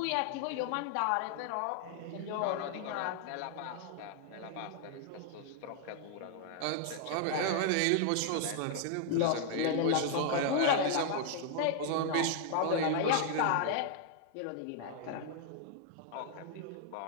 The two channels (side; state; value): both; different; correlation 0.00